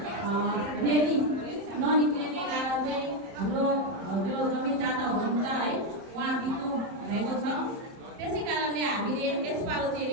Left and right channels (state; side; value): late; left; 30 ms